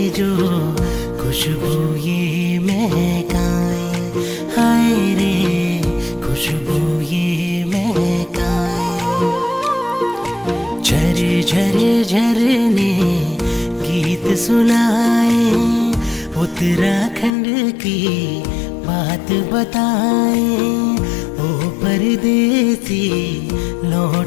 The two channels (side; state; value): right; drops out; at 17.3 s